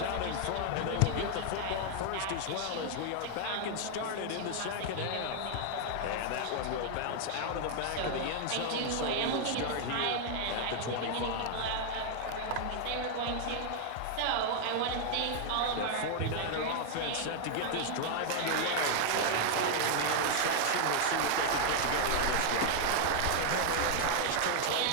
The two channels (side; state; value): both; different; correlation 0.00